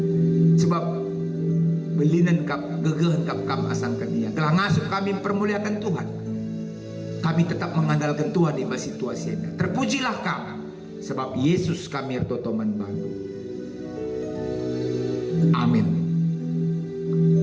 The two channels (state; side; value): identical; both; correlation 1.00